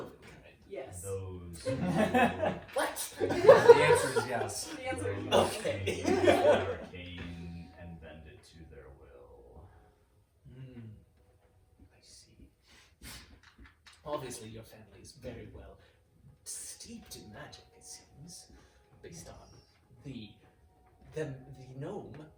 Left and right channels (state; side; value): identical; both; correlation 1.00